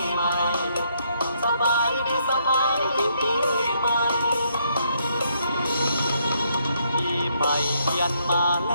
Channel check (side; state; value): both; inverted; correlation -0.73